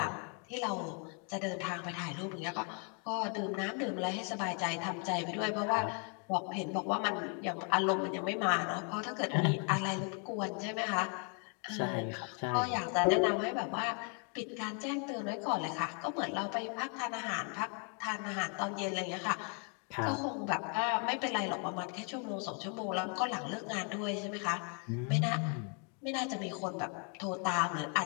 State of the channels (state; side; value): quieter; right; 38.2 dB